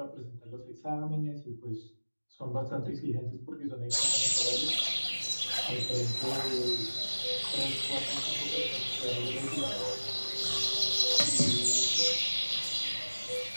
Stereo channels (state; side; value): inverted; both; correlation -1.00